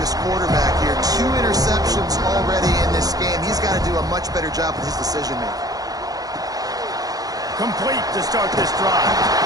this quarterback here. 2 interceptions already in this game. He's got to do a much better job with his decision-making. Complete to start this drive.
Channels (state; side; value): late; left; 0.18 ms